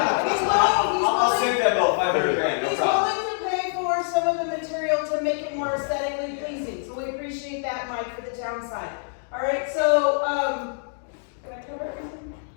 he's willing, I'll send that bill, 500 grand, no he's problem. willing to pay for some of the material to make it more aesthetically pleasing, so we appreciate that, Mike, for the town side. All right, so, can I cover everything?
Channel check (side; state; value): right; silent; digital silence